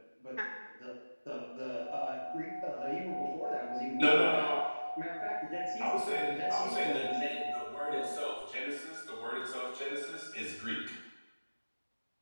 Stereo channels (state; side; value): inverted; both; correlation -1.00